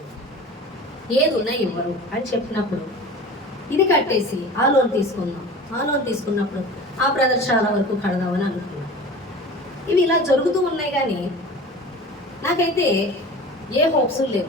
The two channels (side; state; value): both; normal; correlation 0.37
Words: ఏది ఉన్నా ఇవ్వరు అని చెప్పినప్పుడు ఇది కట్టేసి ఆ లోన్ తీసుకుందాం. ఆ లోన్ తీసుకున్నప్పుడు ఆ బ్రదర్ చాలా వరకు కడదామని అనుకున్నాను. ఇవి ఇలా జరుగుతూ ఉన్నాయి, కానీ నాకైతే ఏ హోప్స్